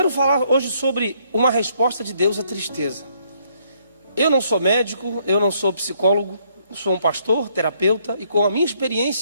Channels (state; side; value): inverted; both; correlation -0.69